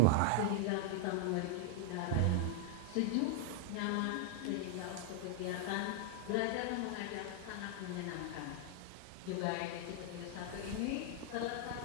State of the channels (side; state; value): both; different; correlation -0.01